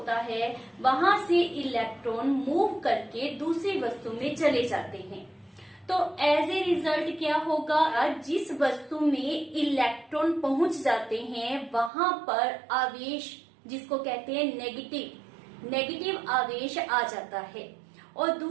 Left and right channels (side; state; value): left; drops out; at 11.9 s